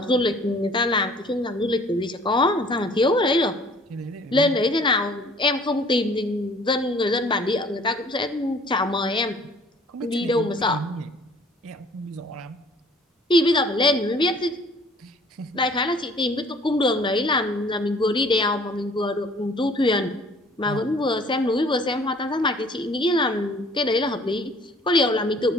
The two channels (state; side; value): normal; both; correlation 0.54